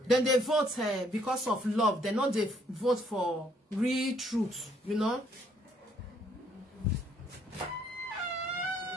Then they vote because of love. They not they vote for real truth, you know.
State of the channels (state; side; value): normal; both; correlation 0.67